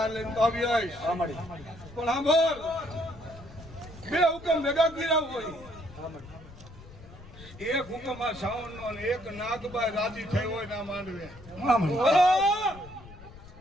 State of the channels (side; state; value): left; noise; rumble, 18 dB below the sound